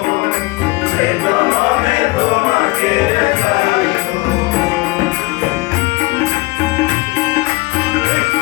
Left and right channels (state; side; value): quieter; right; 22.9 dB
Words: সে জনমে তোমাকে চাইবো